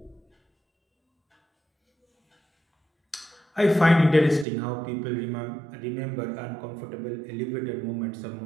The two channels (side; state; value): left; drops out; at 4.5 s